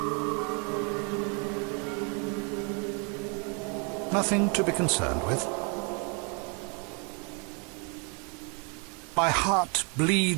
Nothing to be concerned with. My heart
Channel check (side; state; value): left; quieter; 35.8 dB